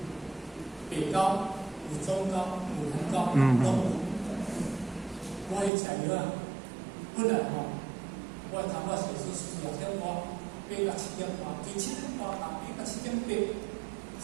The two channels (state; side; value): drops out; left; at 5.7 s